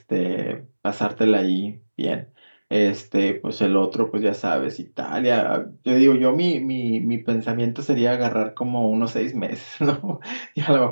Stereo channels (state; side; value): inverted; both; correlation -1.00